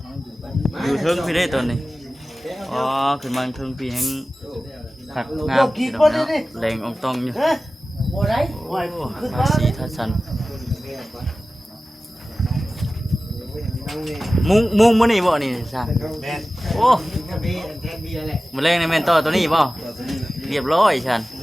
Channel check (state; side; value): normal; both; correlation 0.96